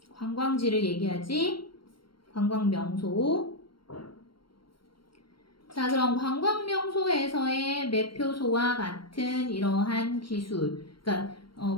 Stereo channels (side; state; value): right; late; 0.73 ms